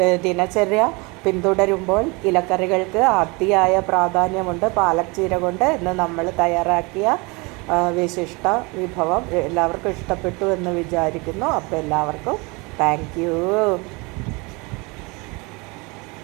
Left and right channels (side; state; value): left; quieter; 27.1 dB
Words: ദിനചര്യ പിന്തുടരുമ്പോൾ ഇലക്കറികൾക്ക് അതിയായ പ്രാധാന്യമുണ്ട്. പാലക് ചീര കൊണ്ട് ഇന്ന് നമ്മൾ തയ്യാറാക്കിയ വിശിഷ്ട വിഭവം എല്ലാവർക്കും ഇഷ്ടപ്പെട്ടു എന്ന് വിചാരിക്കുന്നു. അപ്പോൾ എല്ലാവർക്കും താങ്ക് യു.